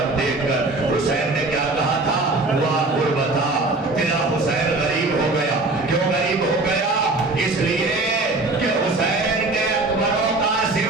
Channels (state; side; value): quieter; left; 3.1 dB